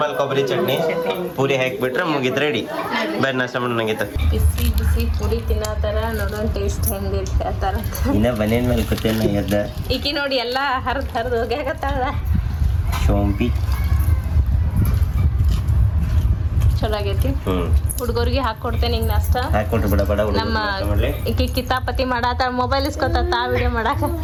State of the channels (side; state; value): both; identical; correlation 1.00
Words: ಕೊಬ್ಬರಿ ಚಟ್ನಿ ಪೂರಿ ಹಾಕ್ಬಿಟ್ರೆ ಮುಗಿತ್ ರೆಡಿ ಬೇರೆ ನಾಷ್ಟ ಮಾಡೋಣಂಗಿತ್ತ ಬಿಸಿ ಬಿಸಿ ಪುರಿ ತಿನ್ನತಾರ ನೋಡೋಣ ಟೇಸ್ಟ್ ಹೆಂಗಿರ್ತ ಆತರ ಇನ್ನ ಬನೇನ್ ಮೇಲೆ ಕೂತೇನ ಎದ್ದ ಈಕಿ ನೋಡಿ ಎಲ್ಲಾ ಹರಿದು ಹೋಗ್ಯಾಕತ್ತಾಳ ಶೋಂಪಿ ಚಲೋ ಆಗೈತಿ ಹುಡುಗರಿಗೆ ಹಾಕೊಡ್ತೇನೆ ಈಗ ನಾಷ್ಟ ಹಾಕೊಟ್ರು ಬಿಡ ಬಡ ನಮ್ಮ ಈಕಿ ಕಿತಾಪತಿ ಮಾಡಾತಾಳ ಮೊಬೈಲ್ ಇಸ್ಕೊತಾ ವಿಡಿಯೋ ಮಾಡಾಕ